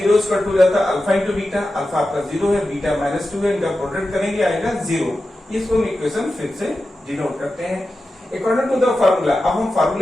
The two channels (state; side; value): normal; both; correlation 0.92